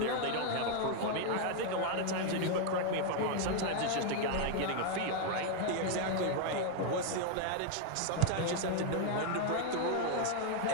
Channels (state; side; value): different; both; correlation 0.00